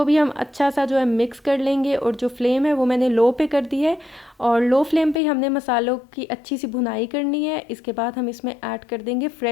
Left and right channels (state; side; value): drops out; right; at 5.2 s